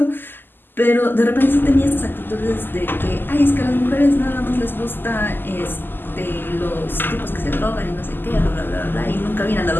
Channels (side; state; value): right; late; 0.094 ms